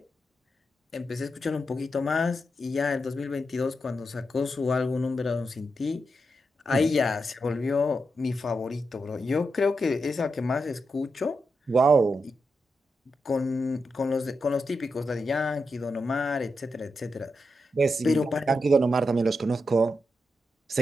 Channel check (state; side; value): normal; both; correlation 0.86